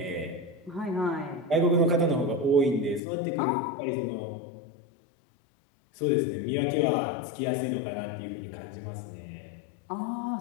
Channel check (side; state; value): right; drops out; at 3.0 s